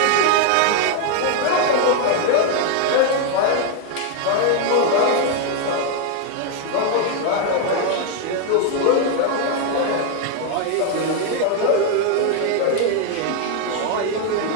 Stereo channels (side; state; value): both; different; correlation 0.00